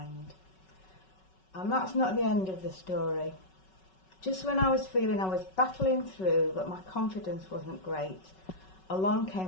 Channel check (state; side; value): late; right; 5.3 ms